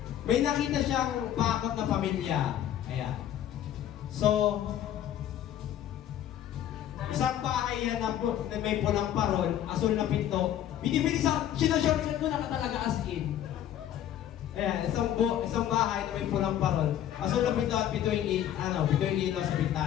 May nakita siyang bakod na pamilya. Ayan. So, isang bahay yan na may pulang parol, asul na pinto. Binibilis ako, sinashortcut ko na talaga as in. Ayan, isang bahay na may pulang parol. Asul na pinto at pito yung ilaw sa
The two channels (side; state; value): right; quieter; 11.2 dB